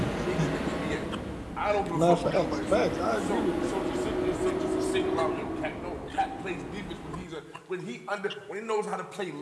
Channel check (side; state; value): both; identical; correlation 1.00